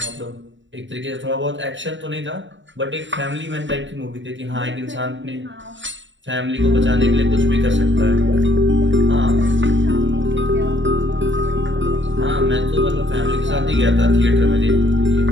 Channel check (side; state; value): left; late; 0.54 ms